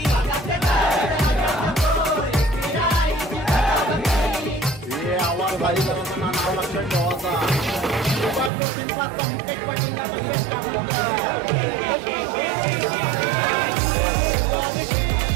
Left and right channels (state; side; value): drops out; left; at 8.5 s